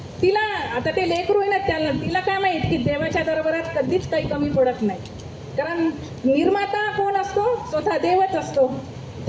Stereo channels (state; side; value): identical; both; correlation 1.00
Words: तिला, आता ते लेकरू आहे ना, तिला काय माहीत की देवाच्या दरबारात कधीच काही कमी पडत नाही, कारण निर्माता कोण असतो, स्वतः देवच असतो,